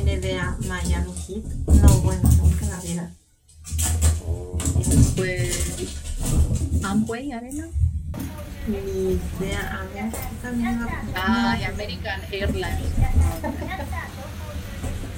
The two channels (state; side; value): identical; both; correlation 1.00